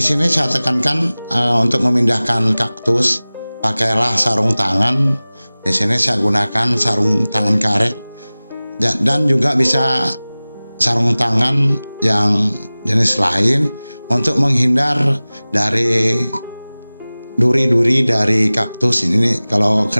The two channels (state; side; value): inverted; both; correlation -0.99